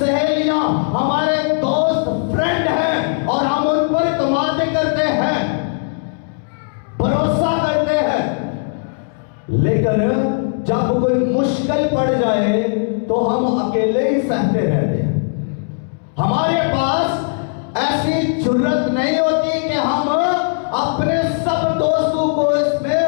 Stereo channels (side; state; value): right; silent; digital silence